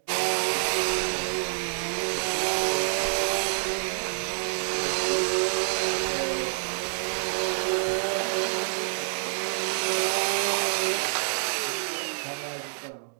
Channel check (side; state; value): left; silent; digital silence